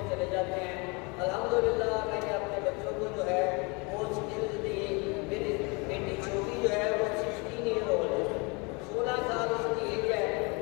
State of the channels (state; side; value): quieter; right; 29.7 dB